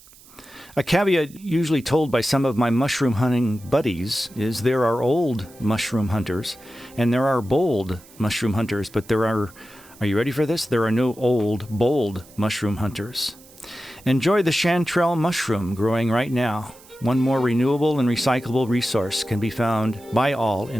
A caveat usually told by some of my mushroom hunting buddies is there are old mushroom hunters and there are bold mushroom hunters, but are you ready for this? There are no old, bold mushroom hunters. Enjoy the chanterelle mushroom growing right now. One more renewable and recyclable resource can be found by all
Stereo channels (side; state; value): right; noise; hiss, 24 dB below the sound